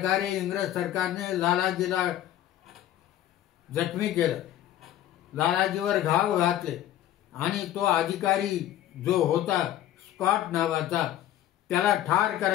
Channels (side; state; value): right; quieter; 12.5 dB